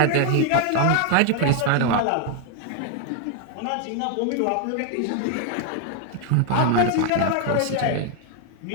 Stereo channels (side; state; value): both; different; correlation 0.00